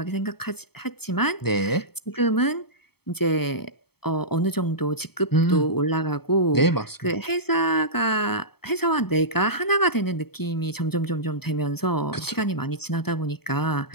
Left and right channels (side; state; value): right; late; 0.96 ms